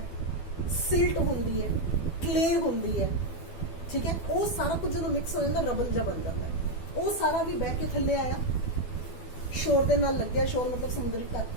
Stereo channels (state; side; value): late; right; 12 ms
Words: ਸਿਲਟ ਹੁੰਦੀ ਹੈ, ਕਲੇ ਹੁੰਦੀ ਹੈ, ਠੀਕ ਹੈ। ਉਹ ਸਾਰਾ ਕੁਝ ਜਦੋਂ ਮਿਕਸ ਹੋ ਜਾਂਦਾ ਰਬਲ ਜਿਹਾ ਬਣ ਜਾਂਦਾ ਹੈ। ਉਹ ਸਾਰਾ ਵੀ ਬਹਿ ਕੇ ਥੱਲੇ ਆਇਆ, ਸ਼ੋਰ ਦੇ ਨਾਲ ਲੱਗਿਆ, ਸ਼ੋਰ ਮਤਲਬ ਸਮੁੰਦਰੀ ਤੱਟ